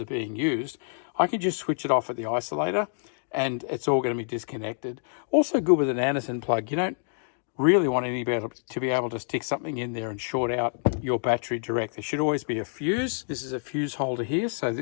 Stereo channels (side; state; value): right; silent; digital silence